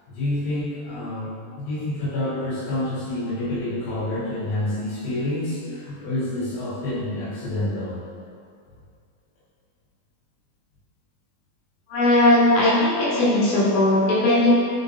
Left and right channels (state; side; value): late; right; 20 ms